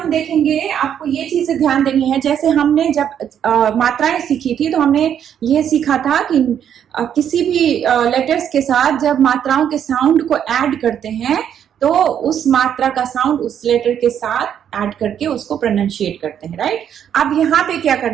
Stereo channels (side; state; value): left; quieter; 9.2 dB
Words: देखेंगे, आपको ये चीजें ध्यान देनी है। जैसे हमने जब मात्राएं सीखी थी तो हमने ये सीखा था कि किसी भी लेटर्स के साथ जब मात्राओं के साउंड को ऐड करते हैं तो उस मात्रा का साउंड उस लेटर के साथ ऐड करके उसको प्रोनाउंशिएट करते हैं, राइट। अब यहाँ पे क्या